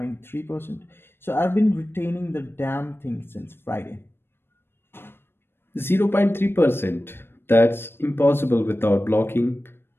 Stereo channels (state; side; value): late; right; 0.11 ms